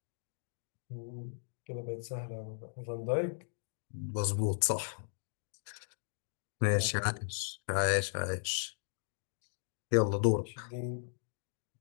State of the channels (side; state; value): right; silent; digital silence